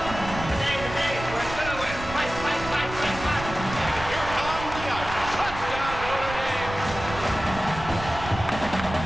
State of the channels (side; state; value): right; noise; rumble, 10 dB below the sound